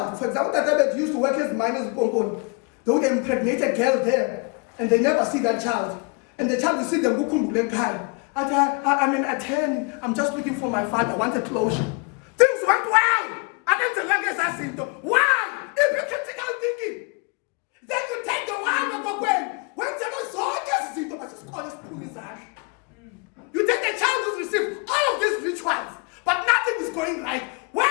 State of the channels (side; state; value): right; quieter; 31.8 dB